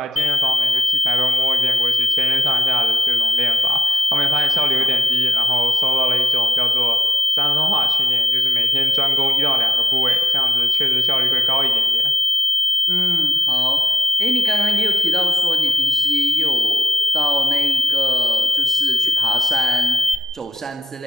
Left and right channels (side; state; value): both; normal; correlation 0.71